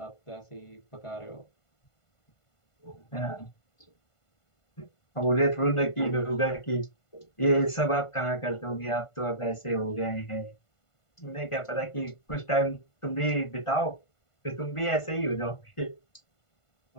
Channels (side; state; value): right; late; 1.5 ms